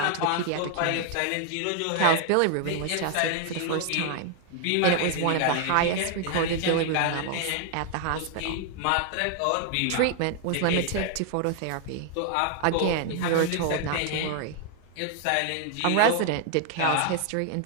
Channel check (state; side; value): different; both; correlation 0.00